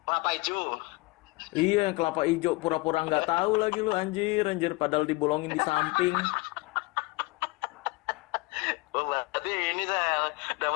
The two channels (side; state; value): right; quieter; 24.1 dB